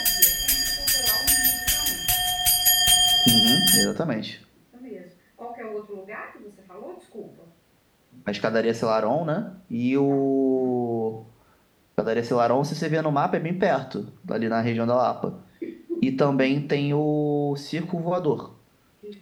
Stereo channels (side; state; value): both; identical; correlation 1.00